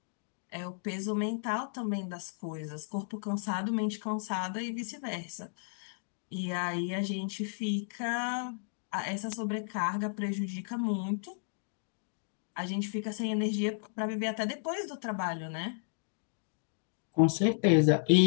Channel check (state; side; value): silent; right; digital silence